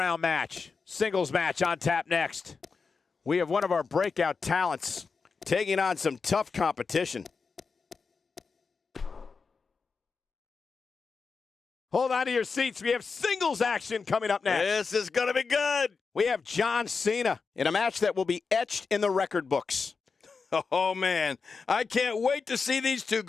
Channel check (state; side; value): quieter; right; 5.0 dB